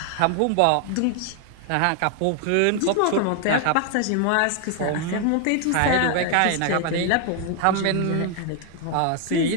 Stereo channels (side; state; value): both; different; correlation 0.00